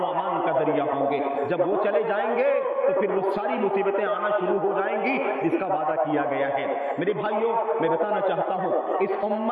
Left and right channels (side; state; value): both; identical; correlation 1.00